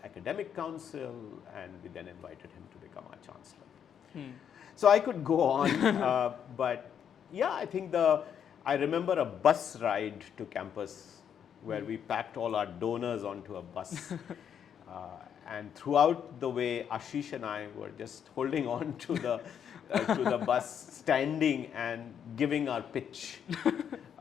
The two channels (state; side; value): quieter; right; 8.4 dB